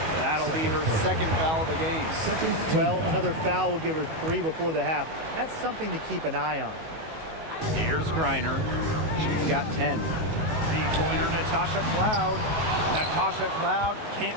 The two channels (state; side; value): late; left; 19 ms